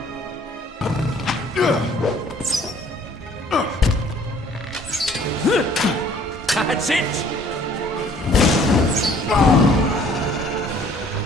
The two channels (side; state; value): both; normal; correlation 0.57